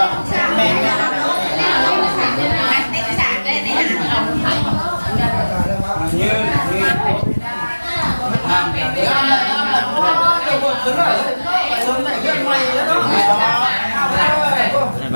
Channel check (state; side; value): inverted; both; correlation -1.00